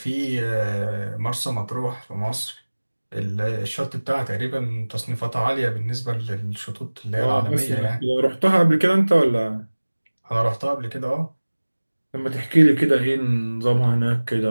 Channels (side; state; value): both; inverted; correlation -1.00